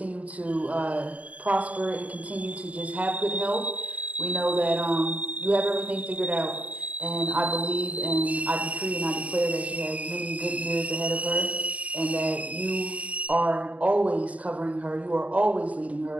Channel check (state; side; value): late; left; 0.068 ms